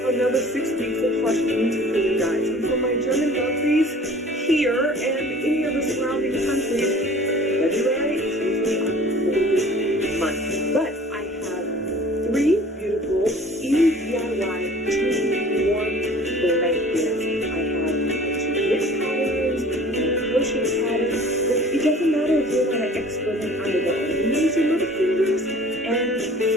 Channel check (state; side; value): normal; both; correlation 0.47